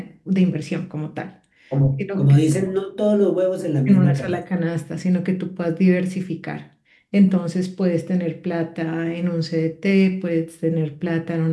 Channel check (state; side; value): identical; both; correlation 1.00